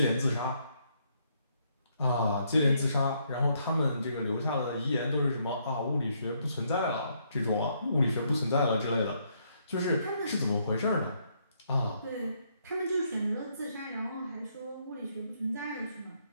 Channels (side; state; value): both; inverted; correlation -0.73